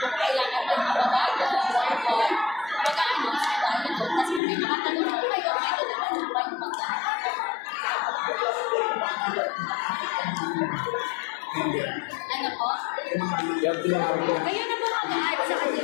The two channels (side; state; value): right; drops out; at 4.4 s